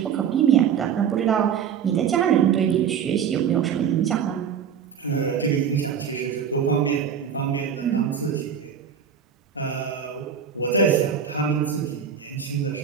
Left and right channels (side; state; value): left; quieter; 7.7 dB